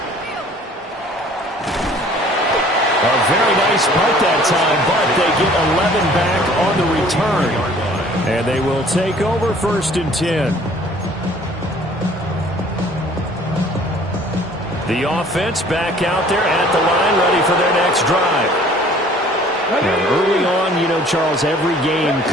nice punt that time, but they get 11 back on the return. And they will take over 1st and 10. The offense back out there at the line, ready for their next drive. Now, early on, you know, Charles, every game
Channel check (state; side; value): normal; both; correlation 0.53